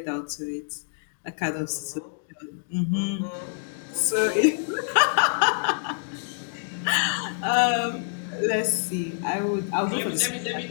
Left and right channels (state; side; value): silent; right; digital silence